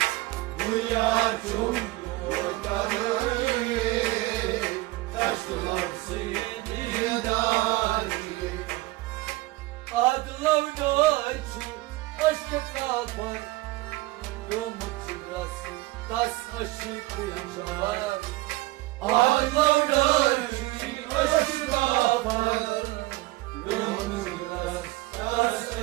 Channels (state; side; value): quieter; left; 19.6 dB